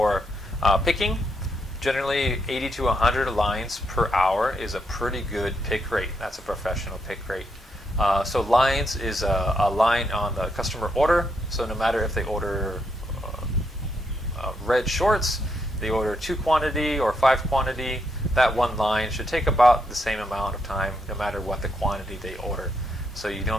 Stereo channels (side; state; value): both; normal; correlation 0.79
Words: picking. Generally, 80 to 100 lines per hour is a pretty good pick rate. That's a professional pick rate. So lines is a line on the customer order. So no matter if they order red shorts, they order 2 quantity or 5 quantity, that one line should take about the same amount of time no matter what the quantity they order. So you